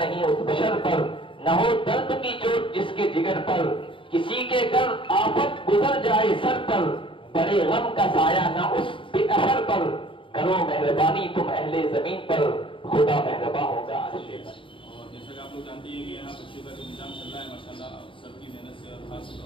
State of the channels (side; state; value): right; late; 0.25 ms